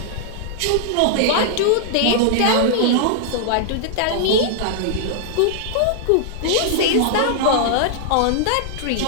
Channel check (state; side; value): different; both; correlation -0.01